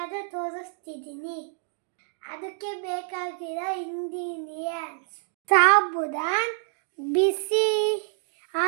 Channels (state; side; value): silent; left; 60 dB below the other